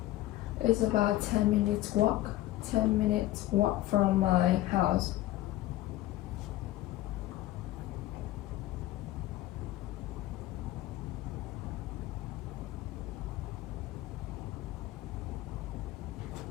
10 minutes walk. 10 minutes walk from my house.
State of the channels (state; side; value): quieter; right; 15.7 dB